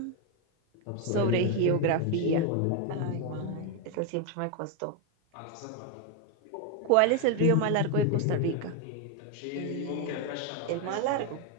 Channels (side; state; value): both; different; correlation 0.01